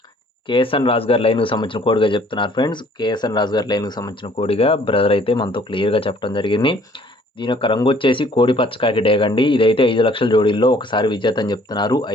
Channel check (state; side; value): normal; both; correlation 0.58